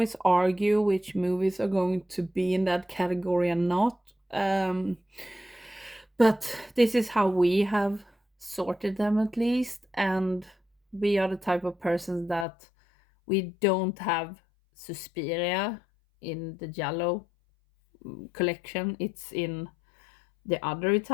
argue which movies are going to be in that category and not. But this is how we have sorted them, at least, and we are the type of persons that we don't have Suspiria in the Giallo collection. It's in the other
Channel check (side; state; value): right; drops out; at 12.5 s